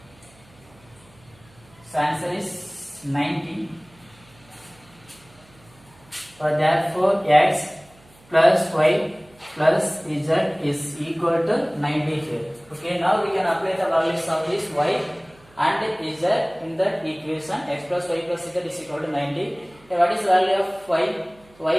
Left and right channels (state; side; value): noise; right; hum, 28 dB below the sound